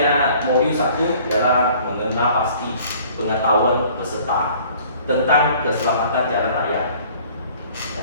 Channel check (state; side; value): inverted; both; correlation -0.53